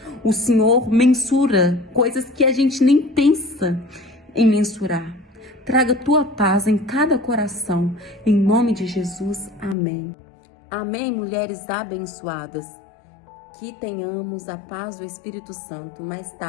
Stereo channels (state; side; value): drops out; right; at 9.8 s